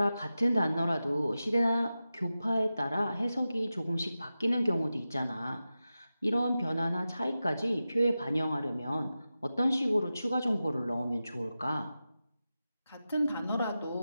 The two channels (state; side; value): inverted; both; correlation -0.93